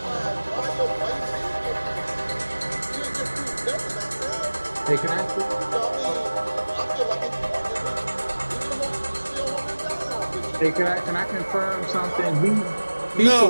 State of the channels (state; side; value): inverted; both; correlation -1.00